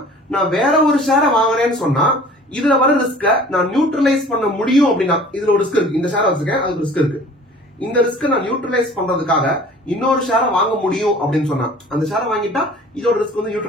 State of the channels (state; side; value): normal; both; correlation 0.47